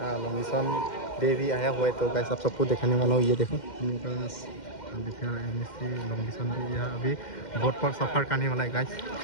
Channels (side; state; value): right; late; 2.1 ms